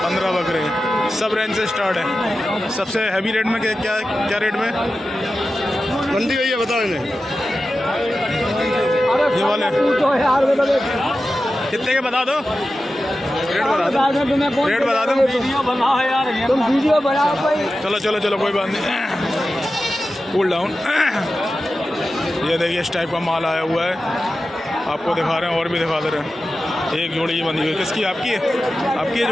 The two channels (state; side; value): normal; both; correlation 0.93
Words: बकरे। सब रेंज से स्टार्ट है। सबसे हैवी रेट में क्या रेट में मंडी गई है बता दें? ये वाले कितने के बता दो? रेट बता दो। तुम वीडियो बनाओ भाई। चलो कोई बात नहीं, कूल डाउन। ये देखिए इस टाइप का माल आया हुआ है, आपको दिखा रहे हैं और भी दिखा दे रहे हैं। एक जोड़ी ये बंधी हुई, किसकी? आपकी है? आपकी है